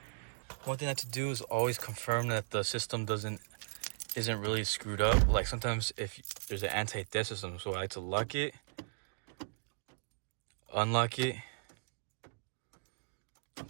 One thing I have to do is always confirm that the system isn't really screwed up. Like sometimes if there's an anti-dead system, so I like to lock it, unlock it,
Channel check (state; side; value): silent; left; digital silence